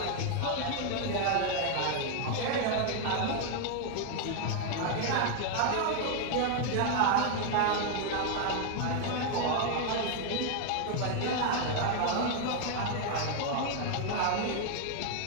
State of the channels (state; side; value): different; both; correlation 0.00